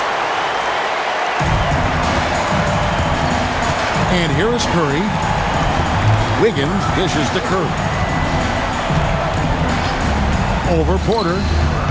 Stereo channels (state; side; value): identical; both; correlation 1.00